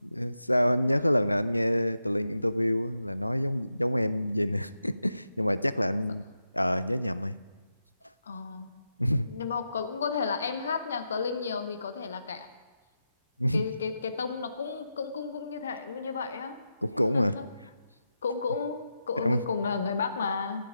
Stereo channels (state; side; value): inverted; both; correlation -0.88